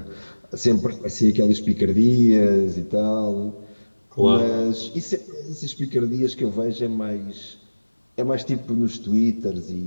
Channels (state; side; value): inverted; both; correlation -1.00